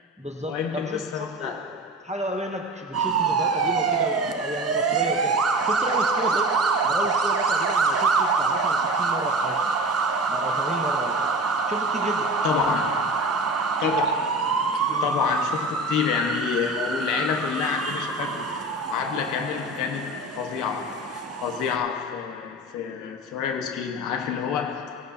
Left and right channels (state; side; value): normal; both; correlation 0.33